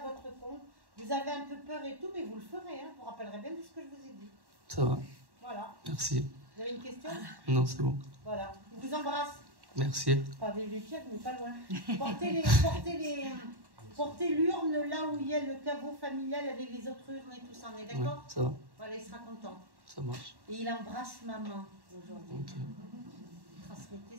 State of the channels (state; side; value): late; left; 1.1 ms